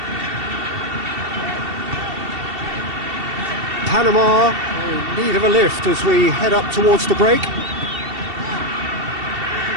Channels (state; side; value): late; left; 2.7 ms